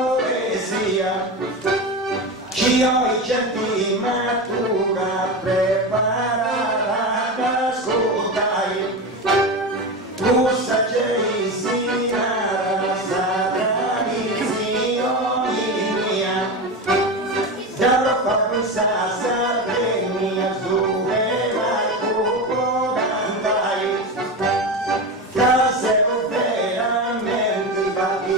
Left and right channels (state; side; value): normal; both; correlation 0.21